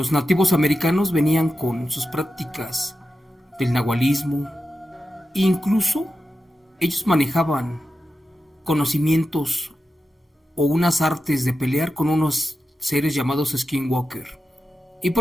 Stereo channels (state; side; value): normal; both; correlation 0.91